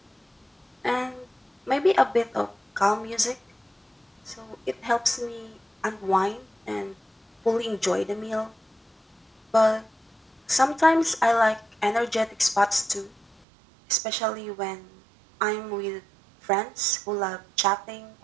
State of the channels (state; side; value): drops out; left; at 13.4 s